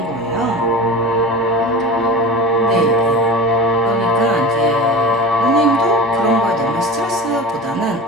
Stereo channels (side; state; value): both; normal; correlation 0.32